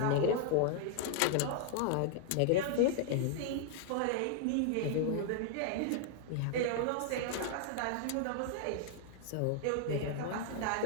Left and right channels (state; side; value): different; both; correlation -0.01